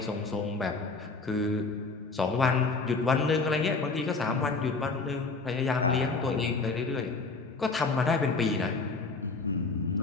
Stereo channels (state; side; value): quieter; right; 4.0 dB